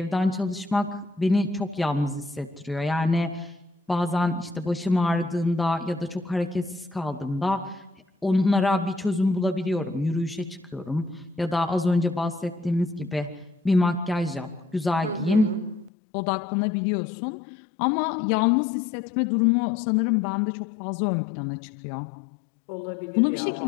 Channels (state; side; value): drops out; right; at 15.9 s